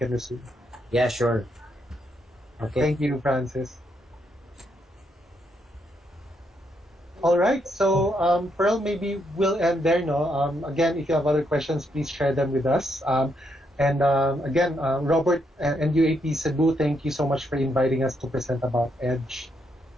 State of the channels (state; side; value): normal; both; correlation 0.77